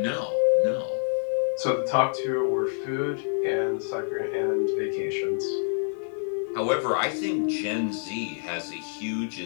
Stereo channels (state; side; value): silent; right; digital silence